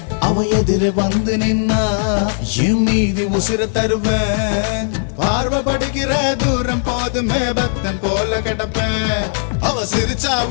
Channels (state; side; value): silent; right; 68 dB below the other